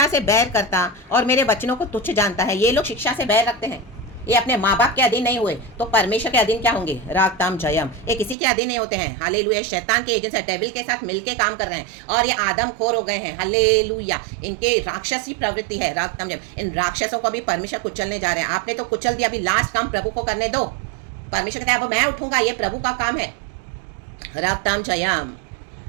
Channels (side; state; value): left; drops out; at 8.3 s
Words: से बैर करता और मेरे वचनों को तुच्छ जानता है। ये लोग शिक्षा से बैर रखते हैं, ये अपने माँ बाप के अधीन नहीं हुए तो परमेश्वर के अधीन क्या होंगे। रागताम जयम। ये किसी के अधीन नहीं होते हैं। हालेलुया। शैतान के एजेंट है, डेविल के साथ मिलके काम कर रहे हैं और ये आदम खोर हो गए हैं। हालेलुया। इनके राक्षसी प्रवृत्ति है। रागताम जयम। इन राक्षसों को भी परमेश्वर कुचलने जा रहे हैं। आपने तो कुचल दिया, अभी लास्ट काम प्रभु को करने दो। परमेश्वर कहते हैं अब मैं उठूंगा, ये प्रभु का काम है। रागताम जयम।